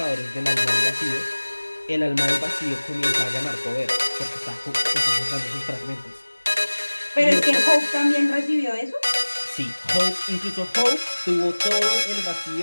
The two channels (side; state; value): both; inverted; correlation -1.00